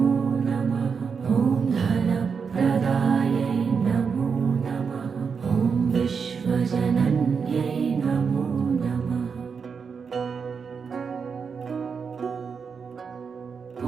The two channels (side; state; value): left; quieter; 5.9 dB